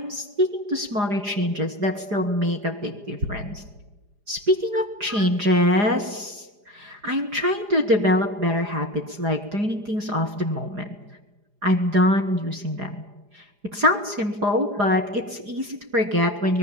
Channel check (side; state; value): left; late; 4.9 ms